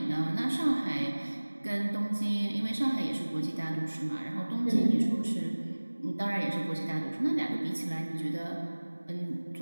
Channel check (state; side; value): inverted; both; correlation -1.00